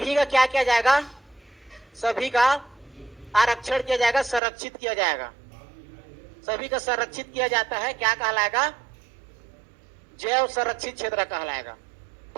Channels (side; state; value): left; drops out; at 4.4 s